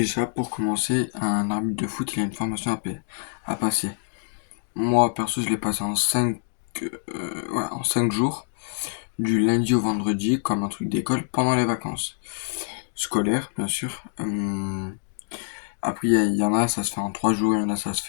pour commencer, un arbitre de foot, il a une formation à passer. Moi, perso, je l'ai passé en 5 jours, du lundi au vendredi, comme un truc d'école, pendant les vacances scolaires, bien sûr. Après, il y en a, ça se fait en 3 jours, il y en a, ça se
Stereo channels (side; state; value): right; silent; digital silence